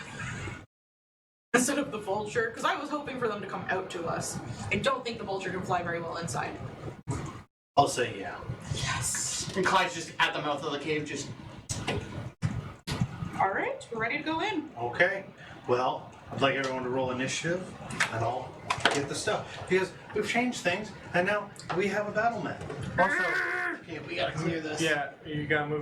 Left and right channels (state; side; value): identical; both; correlation 1.00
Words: instead of the vulture? Because I was hoping for them to come out to us. I don't think the vulture can fly very well inside. I'll say yeah. Yes. And Clyde's just at the mouth of the cave, just. All right. We're ready to go in. Okay. Well, I'd like everyone to roll initiative, and I'll get the stuff because we've changed things, and now we have a battle map. Also, Okay, we gotta clear this. yeah, you gotta